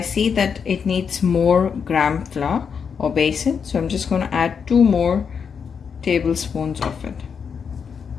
that it needs more gram flour or basin. So I'm just going to add 2 more tablespoons of it.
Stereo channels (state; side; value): quieter; right; 6.5 dB